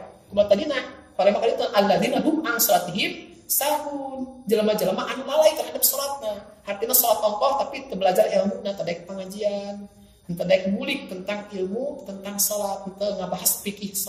Kumaha tadina? Parema kali itu alladzina hum an sholatihim sahun. Jalma-jalma anu lalai terhadap sholatna. Artinya sholat ongkos tapi teu belajar ilmu na tadek pengajian. Teu daek ngulik tentang ilmu tentang sholat, teu ngabahas fikih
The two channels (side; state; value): both; identical; correlation 1.00